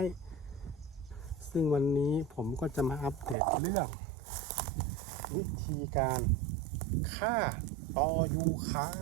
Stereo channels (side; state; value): left; drops out; at 3.4 s